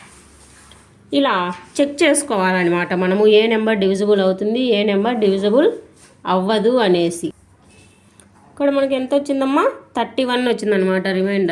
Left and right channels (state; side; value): identical; both; correlation 1.00